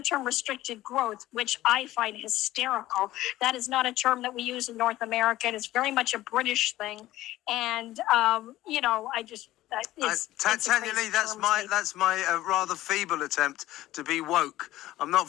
restricted growth, which I find hysterical. That is not a term that we use in North America. It's very much a British thing, and I just. Tanyalee, that's my rather feeble attempt to be woke. I'm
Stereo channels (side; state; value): right; quieter; 15.6 dB